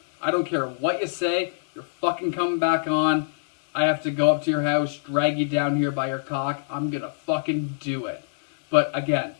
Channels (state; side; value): quieter; right; 38.4 dB